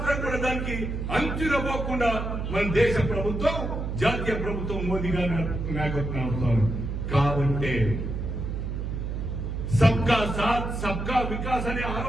కూడా దానికి అంచునపోకుండా మన దేశ ప్రభుత్వం, జాతీయ ప్రభుత్వం మోదీ గారి నాయకత్వం అవుతారు. కాబట్టి సబ్కా సాత్ సబ్కా వికాస్ అనే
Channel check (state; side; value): noise; right; hum, 4 dB below the sound